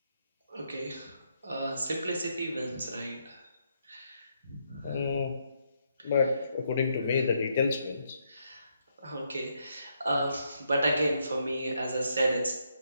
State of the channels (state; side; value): inverted; both; correlation -0.77